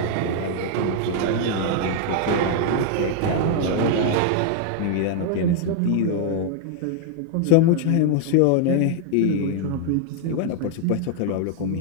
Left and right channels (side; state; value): both; different; correlation 0.00